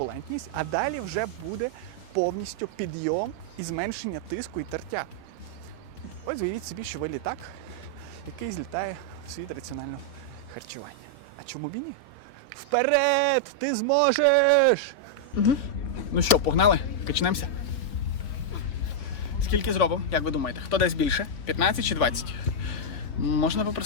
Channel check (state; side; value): late; right; 3.8 ms